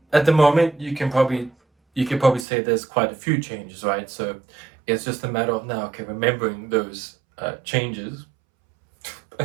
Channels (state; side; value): drops out; left; at 2.5 s